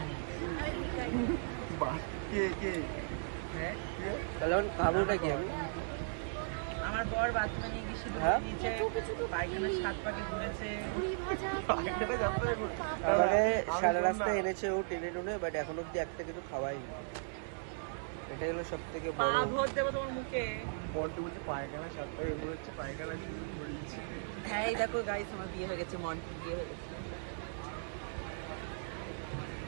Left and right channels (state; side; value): silent; left; digital silence